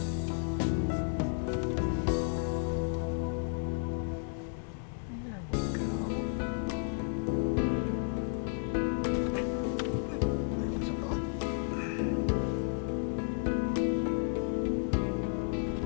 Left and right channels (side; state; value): right; silent; digital silence